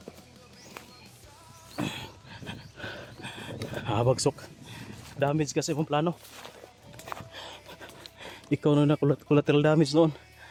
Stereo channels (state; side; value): identical; both; correlation 1.00